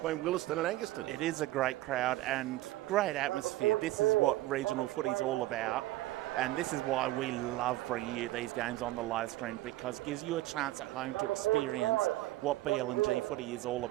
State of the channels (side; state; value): left; quieter; 17.0 dB